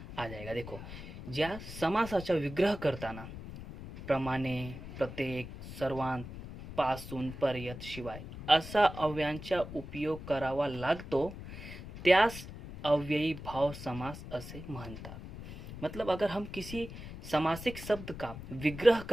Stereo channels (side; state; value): left; noise; rumble, 11 dB below the sound